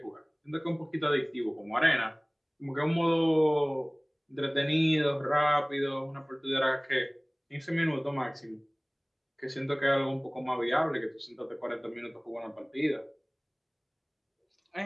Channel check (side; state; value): both; identical; correlation 1.00